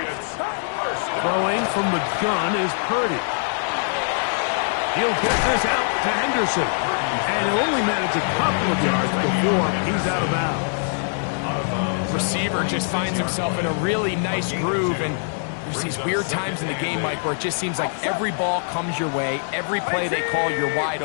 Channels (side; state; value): right; silent; 63 dB below the other